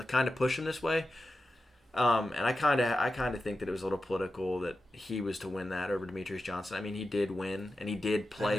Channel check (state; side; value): normal; both; correlation 0.91